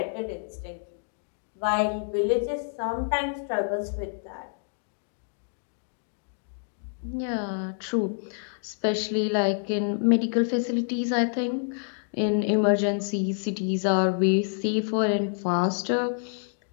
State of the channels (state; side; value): silent; right; digital silence